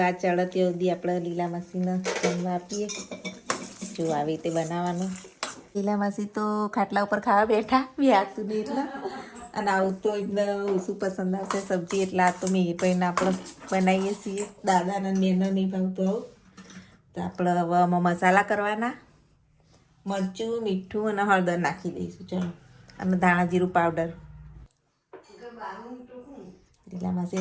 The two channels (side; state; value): both; identical; correlation 1.00